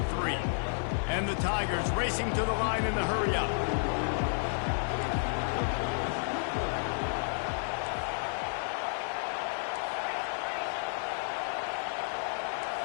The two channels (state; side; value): silent; right; 57 dB below the other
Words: And the Tigers racing to the line in the hurry-up.